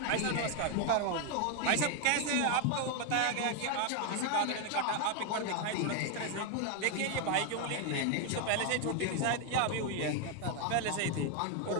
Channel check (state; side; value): different; both; correlation 0.01